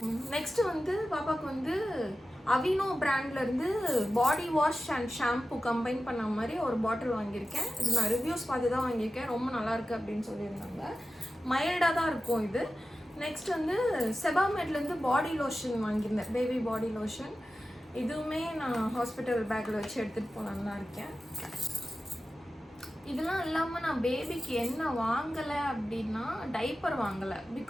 நெக்ஸ்ட்டு வந்து பாப்பாவுக்கு வந்து அவினோ பிராண்ட்லேருந்து body wash and shampoo combine பண்ண மாதிரி ஒரு பாட்டில் வாங்கியிருக்கேன். இது நான் ரிவ்யூஸ் பார்த்து தான் வாங்கியிருக்கேன். ரொம்ப நல்லாயிருக்கு அப்படின்னு சொல்லியிருந்தாங்க. மைல்டாக தான் இருக்கும் இது. நெக்ஸ்ட் வந்து செபாமேட்லேருந்து பாடி லோஷன் வாங்கியிருந்தேன், பேபி பாடி லோஷன். இதுவுமே நான் ஹாஸ்பிட்டல் பேக்கில் வச்சு எடுத்துகிட்டு போகலான்னு தான் இருக்கேன். இதெல்லாம் இல்லாமல் நான் பேபிக்கு என்ன வாங்கலை அப்படின்னா டைப்பர் வாங்கலை.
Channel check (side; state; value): both; normal; correlation 0.93